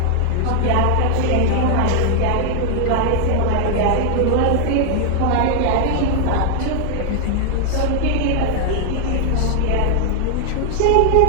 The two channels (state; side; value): different; both; correlation 0.00